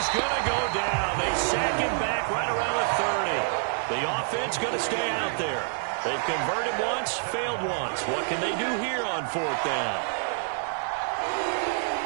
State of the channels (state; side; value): silent; left; 56 dB below the other